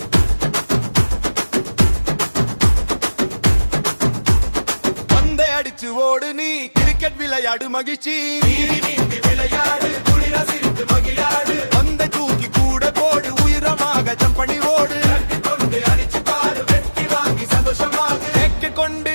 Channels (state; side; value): inverted; both; correlation -1.00